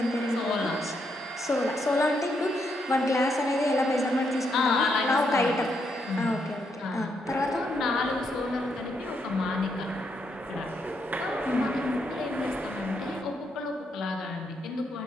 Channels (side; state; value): both; normal; correlation 0.78